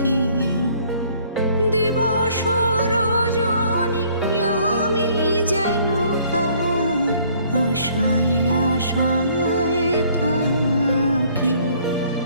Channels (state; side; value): inverted; both; correlation -0.61